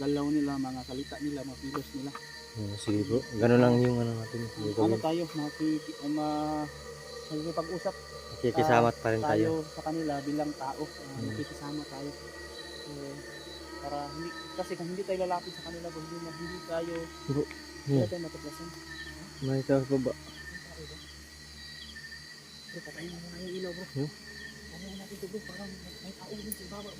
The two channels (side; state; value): both; identical; correlation 1.00